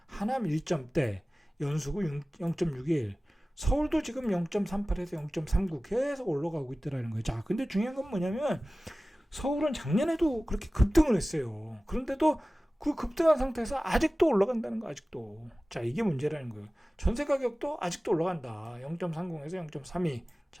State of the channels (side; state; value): both; normal; correlation 0.97